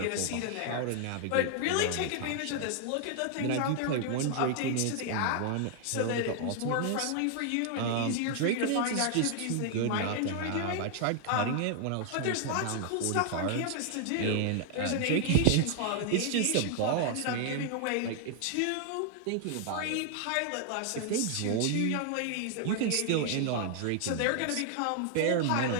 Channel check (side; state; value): both; different; correlation 0.00